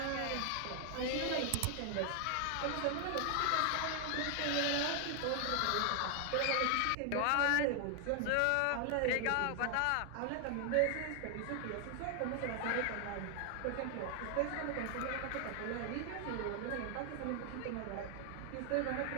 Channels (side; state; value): both; different; correlation 0.00